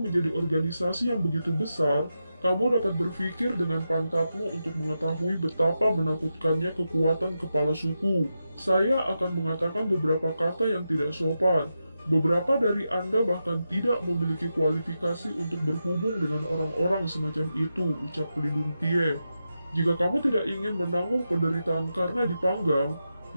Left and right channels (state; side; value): inverted; both; correlation -0.89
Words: menjadi organisasi yang begitu besar, kamu dapat berpikir dengan pantatmu untuk mengetahui betapa menakutkannya kekuatan kepala suku. Saya akan mengatakan beberapa kata yang tidak sopan. Beberapa dari Anda bahkan tidak memiliki kualifikasi untuk berhubung dengan orang-orang semacam itu, ucap pelindung Tie. Jika kamu tidak ingin menanggung penderitaan karena dipanggang,